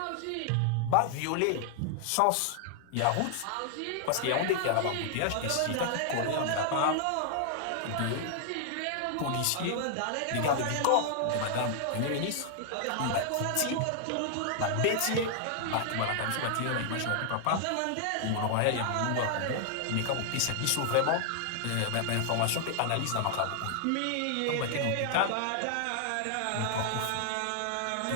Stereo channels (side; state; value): both; different; correlation 0.00